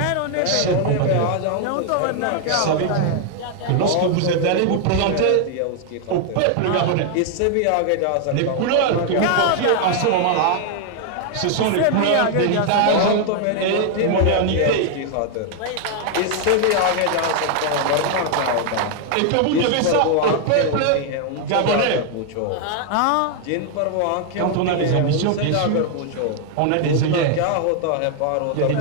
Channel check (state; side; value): different; both; correlation 0.00